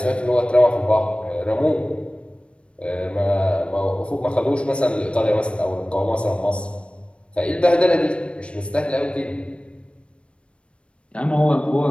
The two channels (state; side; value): late; right; 0.059 ms